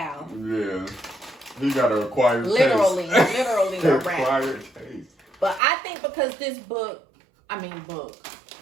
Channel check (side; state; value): left; drops out; at 5.6 s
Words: Yeah. He got a acquired Literally taste. a wrap. Acquired taste. But I think because this book, I think